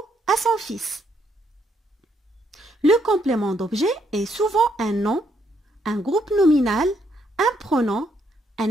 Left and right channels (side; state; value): both; normal; correlation 0.74